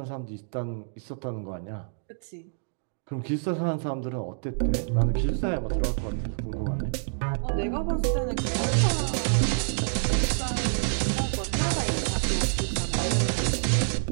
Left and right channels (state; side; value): silent; left; digital silence